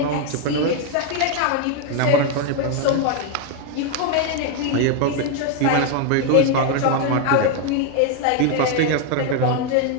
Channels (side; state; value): both; different; correlation 0.01